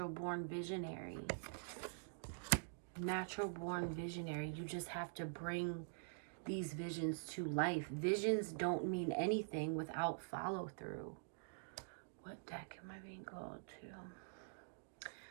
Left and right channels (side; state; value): left; silent; digital silence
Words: visionary. Natural-born visionary. You just have to bring these visions to life. Visions don't mean anything without follow-through. What deck am I being called to?